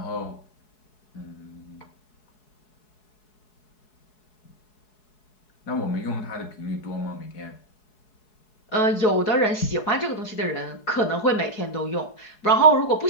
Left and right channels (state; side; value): late; right; 4.7 ms